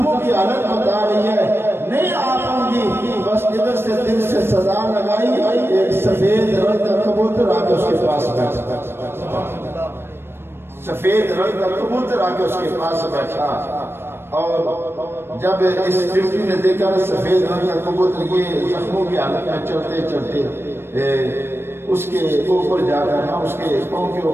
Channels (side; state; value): left; late; 0.11 ms